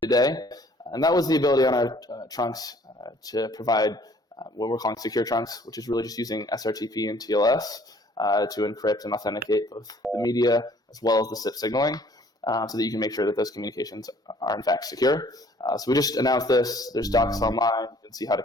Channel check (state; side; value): normal; both; correlation 0.57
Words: today, and that was the ability on our trunks to provide what we're calling secure trunks, which is really just using SRTP and TLS to encrypt and authenticate both the media as well as the SIP signaling, so that you can make sure that those communications are in fact secure. So we just announced this. There's docs online. You can see how to